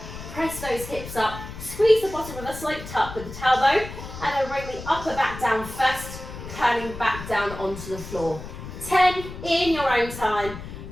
press those hips up, squeeze the bottom with a slight tuck with the tailbone, and then bring the upper back down first, turning back down onto the floor. 10 in your own time.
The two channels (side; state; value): left; noise; rumble, 11 dB below the sound